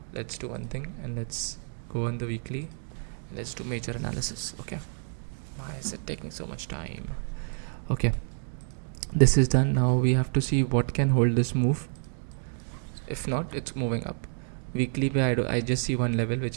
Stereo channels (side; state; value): left; silent; 59 dB below the other